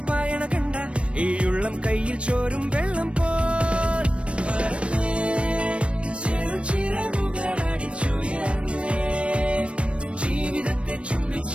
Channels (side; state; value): left; late; 0.060 ms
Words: പായണ കണ്ട ഈ ഉള്ളം കയ്യിൽ ചോറും വെള്ളം പോ ജീവിതത്തെ